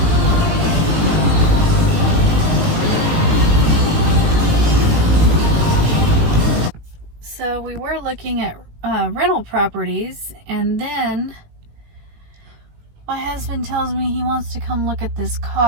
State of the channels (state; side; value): late; left; 19 ms